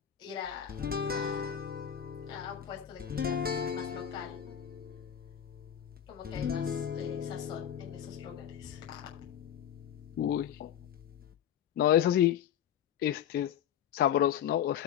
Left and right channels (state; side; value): quieter; right; 9.6 dB